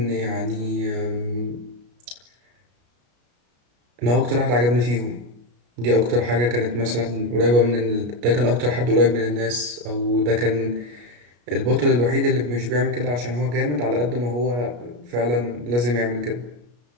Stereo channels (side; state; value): left; late; 33 ms